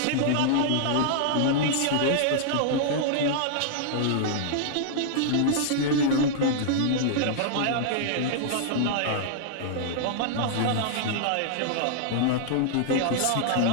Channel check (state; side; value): different; both; correlation -0.01